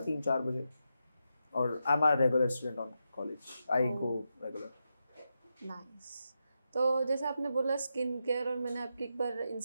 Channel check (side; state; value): both; inverted; correlation -0.86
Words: 3-4 बजे, और आई am a regular student on college, I go regular. Nice. तो जैसे आपने बोला स्किन केयर, और मैंने आपकी एक बार